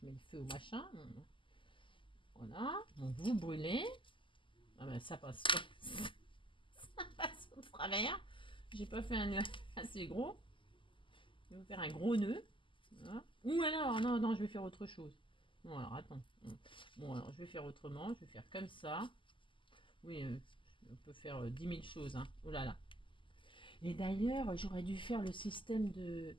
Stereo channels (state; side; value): late; right; 0.25 ms